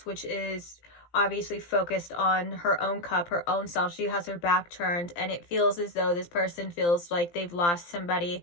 which is obviously focused on her own cup, her own self. She has her back turned, and it feels as though this person feels like they've lost somebody,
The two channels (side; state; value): right; late; 17 ms